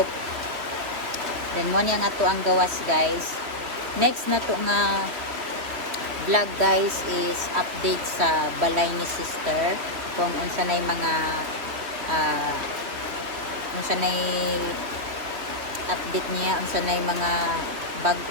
Then mo niya nga to ang gawas guys. Next na to nga vlog guys is update sa balay ni sister kung unsa nay mga unsa nay update niya, unsa nay mga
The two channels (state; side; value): late; left; 3.1 ms